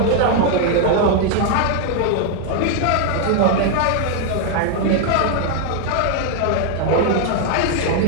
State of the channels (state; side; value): different; both; correlation 0.00